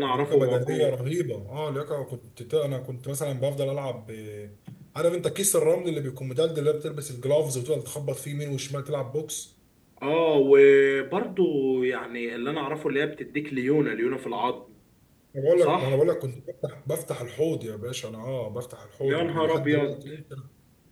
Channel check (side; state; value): both; identical; correlation 1.00